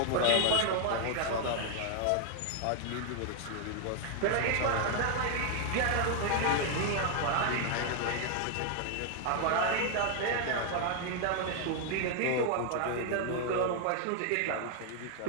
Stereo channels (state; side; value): different; both; correlation 0.00